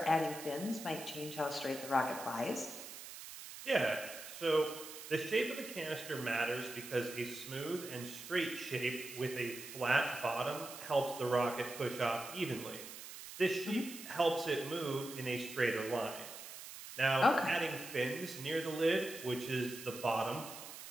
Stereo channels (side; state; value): right; noise; hiss, 12 dB below the sound